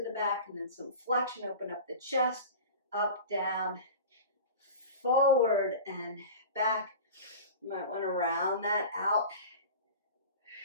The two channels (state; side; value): inverted; both; correlation -0.34